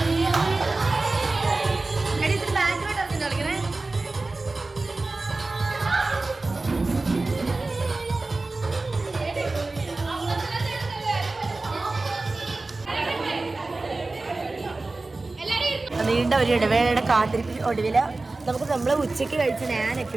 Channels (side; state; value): left; quieter; 3.3 dB